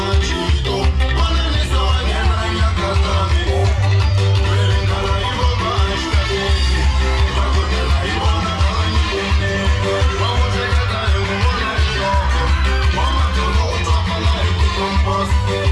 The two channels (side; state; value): both; identical; correlation 1.00